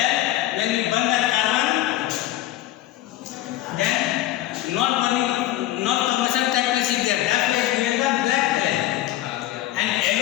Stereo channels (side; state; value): right; quieter; 14.6 dB